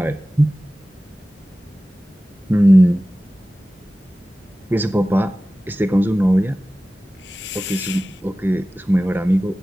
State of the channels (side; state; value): both; normal; correlation 0.96